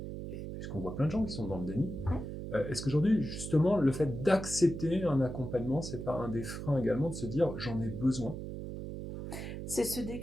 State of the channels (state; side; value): noise; right; hum, 7 dB below the sound